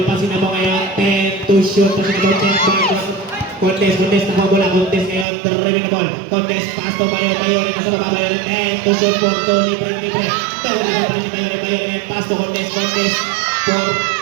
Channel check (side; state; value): left; drops out; at 5.2 s